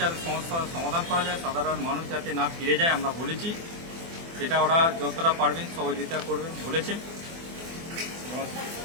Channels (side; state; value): left; late; 24 ms